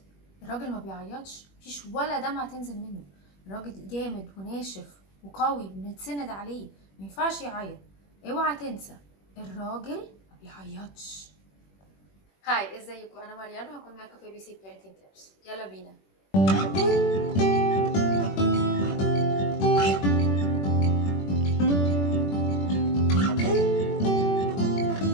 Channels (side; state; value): right; late; 21 ms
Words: الراجل ما بيعيطش، مفيش ولا دمعة تنزل منه. الراجل جامد وناشف وقوي بنتسند عليه، ما ينفعش يعيط. اوعى تنسى، الراجل ما بيعيطش. هاي، ازيكم؟ انا مريان وهكون معاكم في بي سي بيرنتنج تيبس. يلا بينا.